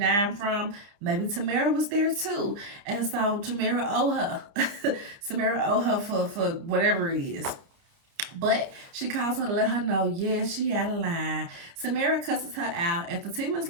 dime from. Maybe Tamara was there too. And so Tamara owe her. Tamara owe her for whatever it is. But she calls her to let her know, yeah, she out of line. Samara cusses her out, and Fatima's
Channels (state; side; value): late; left; 30 ms